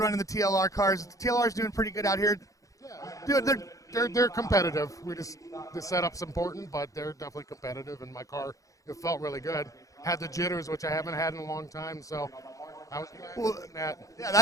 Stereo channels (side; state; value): right; late; 0.16 ms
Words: the TLR cars. The TLR's doing pretty good out here. Yeah. They're competitive. The setup's important, but they're definitely competitive. And my car, it felt really good. Had the jitters, which I haven't had in a long time, so I was that. Yeah,